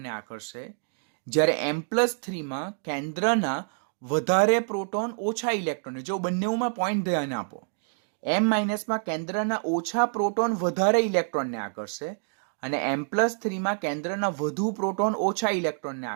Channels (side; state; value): left; silent; 60 dB below the other